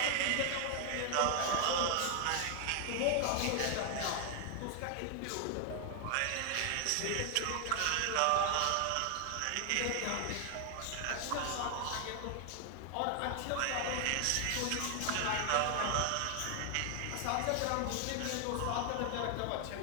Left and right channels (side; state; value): both; different; correlation 0.00